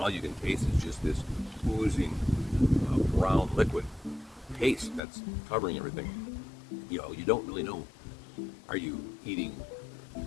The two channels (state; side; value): drops out; right; at 5.0 s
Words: you can taste is just this oozing brown liquid paste that's covering everything. You know, you don't really know, are you eating